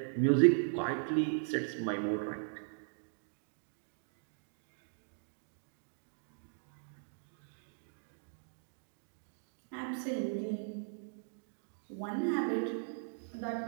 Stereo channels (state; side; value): silent; left; digital silence